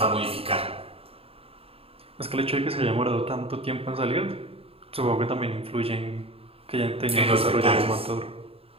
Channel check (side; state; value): left; late; 0.28 ms